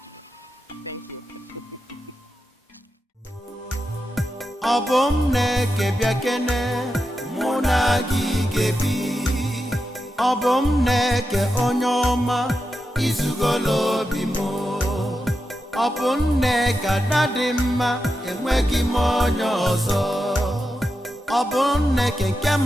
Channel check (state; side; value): normal; both; correlation 0.89